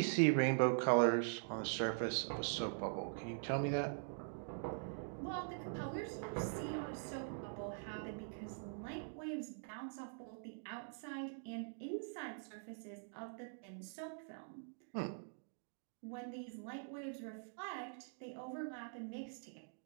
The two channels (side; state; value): left; silent; digital silence